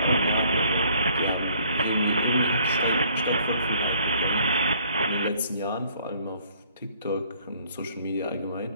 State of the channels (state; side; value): inverted; both; correlation -0.60